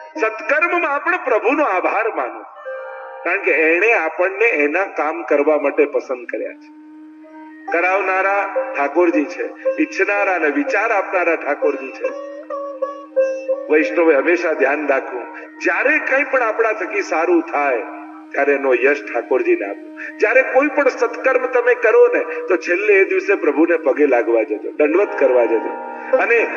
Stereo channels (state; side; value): identical; both; correlation 1.00